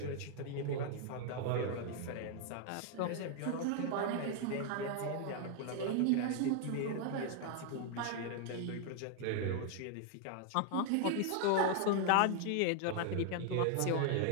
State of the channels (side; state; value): both; different; correlation 0.00